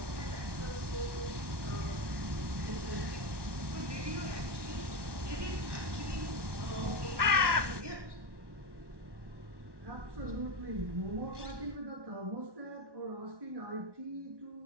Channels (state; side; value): late; left; 1.1 ms